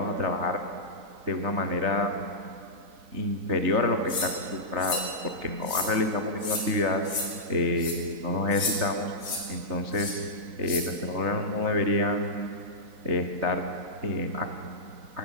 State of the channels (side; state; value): left; late; 4.0 ms